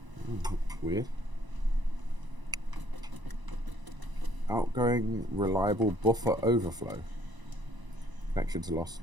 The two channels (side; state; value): left; late; 1.0 ms